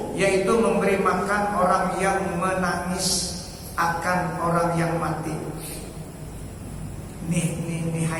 yaitu memberi makan orang yang menangis akan orang yang mati. Nih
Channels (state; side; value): identical; both; correlation 1.00